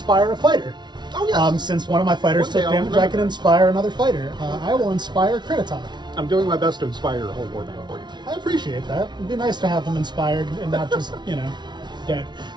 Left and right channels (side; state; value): left; late; 0.21 ms